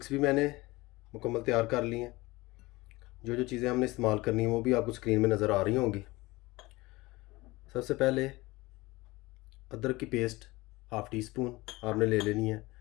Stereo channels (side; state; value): right; quieter; 21.1 dB